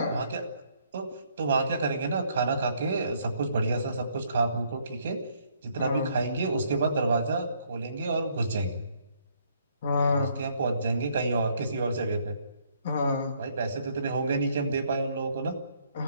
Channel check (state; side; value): inverted; both; correlation -0.68